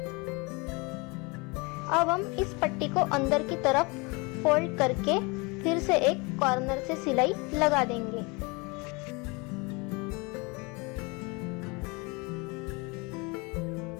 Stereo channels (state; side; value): quieter; right; 28.2 dB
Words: अब हम इस पट्टी को अंदर की तरफ फोल्ड करके फिर से एक कॉर्नर से सिलाई लगा देंगे।